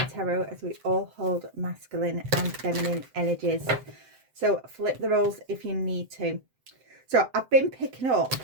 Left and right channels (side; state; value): left; late; 7.7 ms